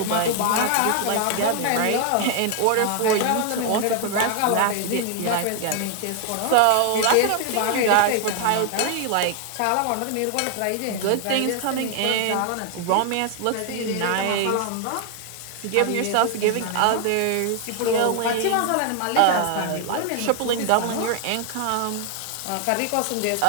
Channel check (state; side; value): different; both; correlation 0.00